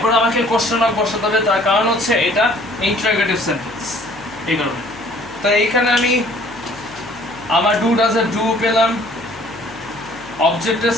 আমাকে কোশ্চেন মার্ক বসাতে হবে, তার কারণ হচ্ছে এটা ইন্টারোগেটিভ সেন্টেন্স, এই কারণে। তো এইখানে আমি আমার ডু ডাজের ডু পেলাম, অবজেক্টের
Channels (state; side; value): noise; left; hum, 24 dB below the sound